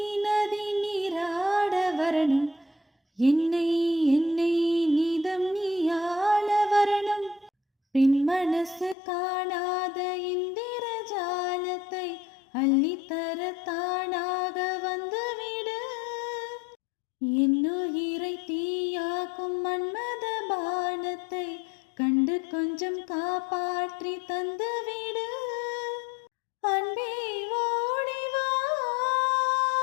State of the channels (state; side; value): drops out; right; at 9.0 s